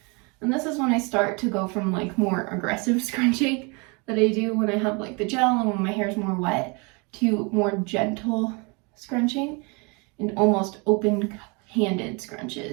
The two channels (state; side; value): quieter; left; 30.6 dB